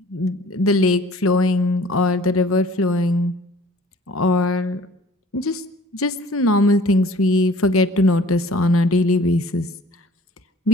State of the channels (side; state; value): both; normal; correlation 0.50